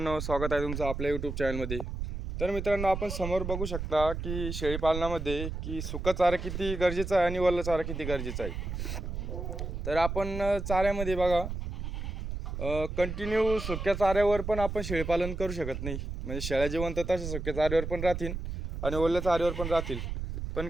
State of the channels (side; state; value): right; noise; rumble, 5 dB below the sound